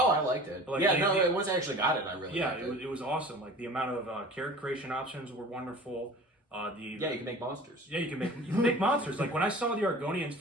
I liked it. Like, once I actually got it, I really liked it. It was awesome. Like the amount of character creation options were wonderful. You can make monsters. Yeah, you can make monsters. Like when I saw the Argonians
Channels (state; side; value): normal; both; correlation 0.41